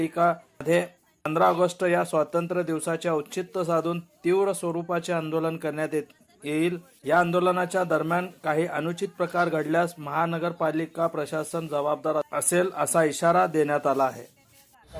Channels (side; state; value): both; identical; correlation 1.00